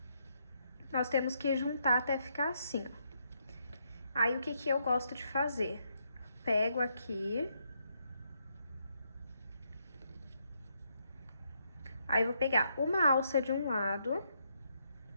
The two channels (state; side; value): inverted; both; correlation -0.77